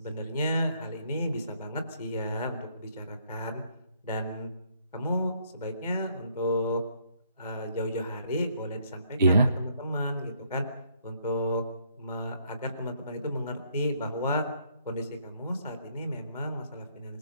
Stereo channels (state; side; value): inverted; both; correlation -0.68